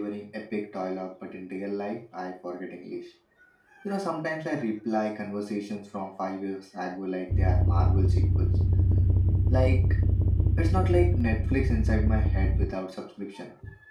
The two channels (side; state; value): both; identical; correlation 1.00